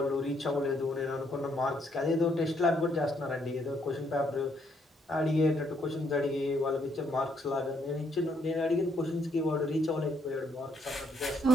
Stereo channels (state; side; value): normal; both; correlation 0.71